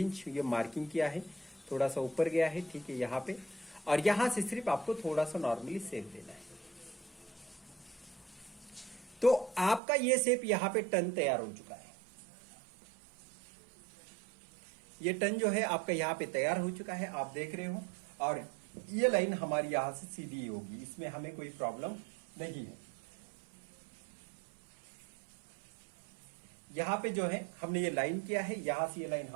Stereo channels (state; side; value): drops out; left; at 9.8 s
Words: ये मार्किंग किया है, थोड़ा सा ऊपर गया है, ठीक है यहां पे। और यहां से सिर्फ आपको थोड़ा सा नॉर्मली शेप देना है। तो आपका ये शेप यहां पे टर्न तैयार हो चुका है। ये टर्न जो है आपका यहां पे तैयार हो चुका है, आप देख रहे हो। और ये लाइन हमारी यहां से सीधी होगी, इसमें हमें कोई प्रॉब्लम नहीं है। यहां पे जो है हमने ये लाइन किया है, यहां से ये लाइन